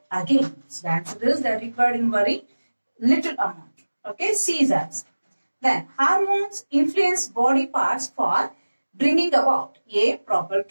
again. So the answer is they are required in very little amount. Okay, C is answer. Then hormones influence body parts for bringing about A. Proper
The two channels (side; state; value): both; inverted; correlation -1.00